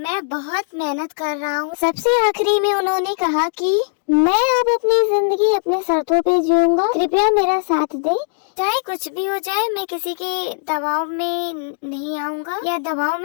बहुत मेहनत कर रहा हूँ। सबसे आखिरी में उन्होंने कहा कि मैं अब अपनी जिंदगी अपने शर्तों पे जीऊंगा, कृपया मेरा साथ दें। चाहे कुछ भी हो जाए, मैं किसी के दबाव में नहीं आऊंगा या दबाव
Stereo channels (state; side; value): silent; right; digital silence